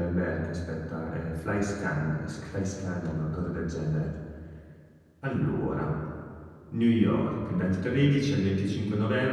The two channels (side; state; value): both; identical; correlation 1.00